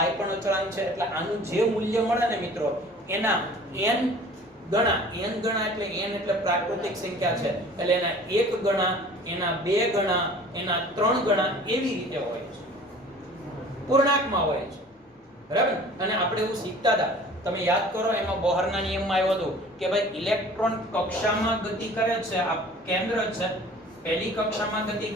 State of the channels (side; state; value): both; normal; correlation 0.47